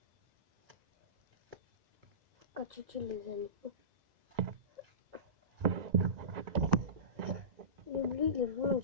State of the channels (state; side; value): late; left; 1.9 ms